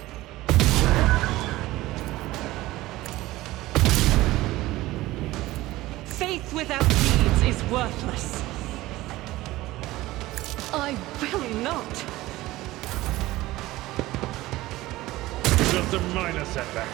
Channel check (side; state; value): left; quieter; 17.8 dB